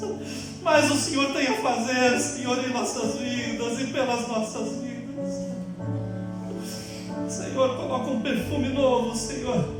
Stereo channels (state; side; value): identical; both; correlation 1.00